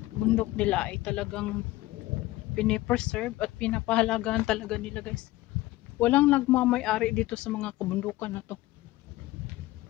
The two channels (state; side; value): quieter; right; 17.7 dB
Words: bundok nila ay talagang pinipreserve at pinapahalagahan talaga nila guys. Walang nagmamay-ari dito sa mga kabundukan na to.